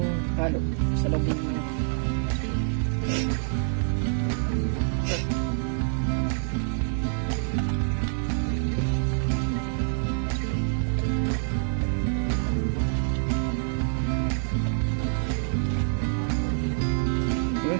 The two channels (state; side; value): silent; left; 61 dB below the other